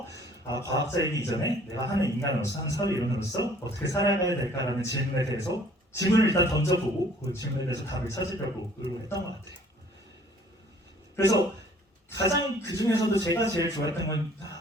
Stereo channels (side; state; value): both; normal; correlation 0.56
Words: 과학자이기 이전에 내가 하는 인간으로서 하는 사회 이론으로서 어떻게 살아가야 될까라는 질문에 대해서 질문을 일단 던져보고 그 질문에 대해서 답을 찾으려고 노력했던 것 같아요. 그래서 가장 그 중에서도 제가 제일 좋아했던 건